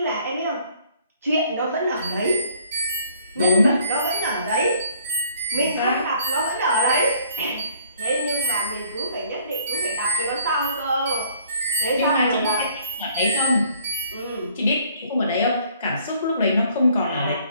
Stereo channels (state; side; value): inverted; both; correlation -0.60